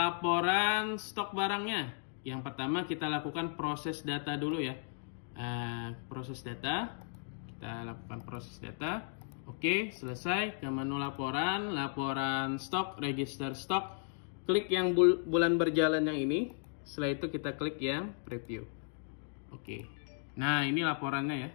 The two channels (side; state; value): right; silent; 54 dB below the other